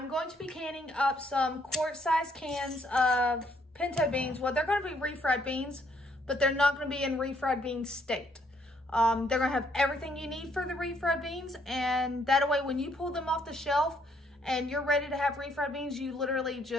going to be canning up some quart-sized cans of pinto beans. Well, they're going to be refried beans, but they're not going to be in refried bean state. They're going to have everything you need for the refried beans, and that way when you pull them off the shelf and you're ready to have refried beans, you literally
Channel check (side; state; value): both; normal; correlation 0.69